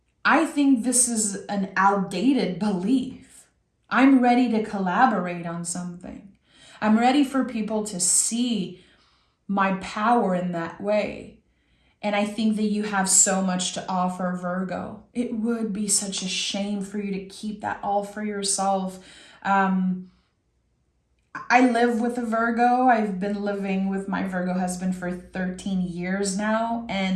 I think this is an outdated belief. I'm ready to collaborate on something. I'm ready for people to see my power in that way. And I think that you have so much to offer, Virgo. It would be such a shame for you to keep that all for yourself. I live with a Virgo. I've been living with my Virgo husband for 13 years now.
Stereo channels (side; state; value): both; identical; correlation 1.00